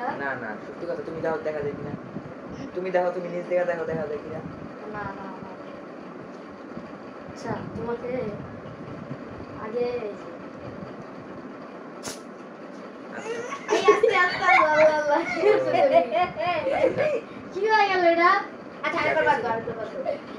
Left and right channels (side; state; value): both; identical; correlation 1.00